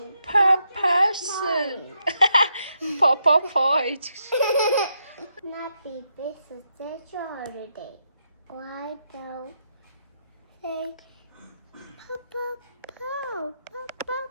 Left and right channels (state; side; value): inverted; both; correlation -0.81